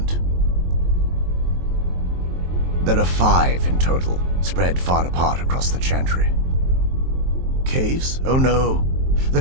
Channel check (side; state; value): left; late; 23 ms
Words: There are 5 in total, spread far apart across the chantry. Caves? Oh no. The